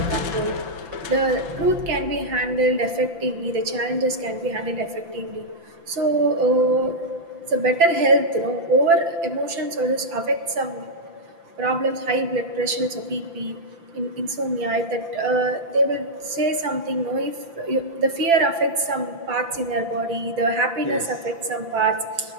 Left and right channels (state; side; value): late; left; 5.9 ms